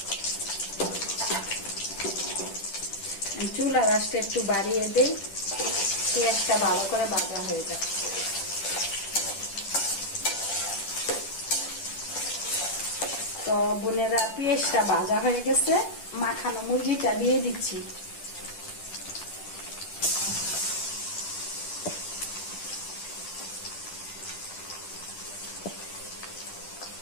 চুলার আঁচটা একটু বাড়িয়ে দেই, পেঁয়াজটা ভালো করে ভাজা হয়ে যায়। তো বোনেরা পেঁয়াজটা ভাজা হয়ে গেছে, মাখানো মুরগিটা দিয়ে দিচ্ছি।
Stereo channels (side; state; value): right; late; 10 ms